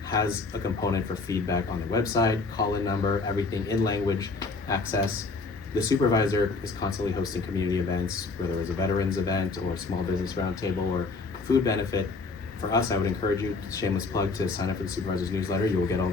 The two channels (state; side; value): quieter; right; 3.9 dB